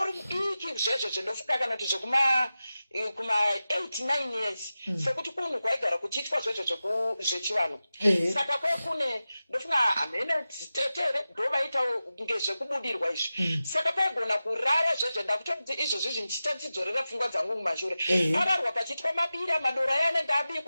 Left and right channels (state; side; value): inverted; both; correlation -0.94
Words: iki zvezvo zvindofuka kana kuti zvekuma 8-9 years sekuti kunhu kwaigara kuchiitwa zvezvo zvechivanhu saka kwekune ndofunga hamene tetere ndovaitawo ngezvekubudirwa izvi saka paigona kurara zvezvo ndakutoti izvozvi zvindichita ndichidzorera pfungwa dzangu mumashure ararwa pachiitwa mabira madoro aya anenge